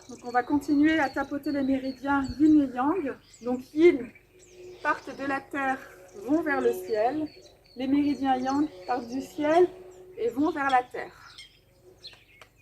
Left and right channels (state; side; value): identical; both; correlation 1.00